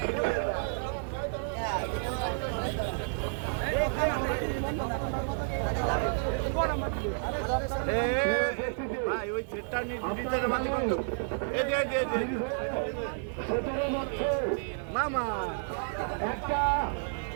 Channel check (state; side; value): silent; left; digital silence